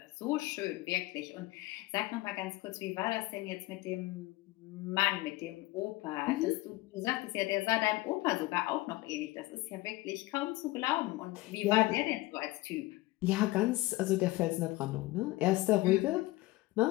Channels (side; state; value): right; quieter; 19.8 dB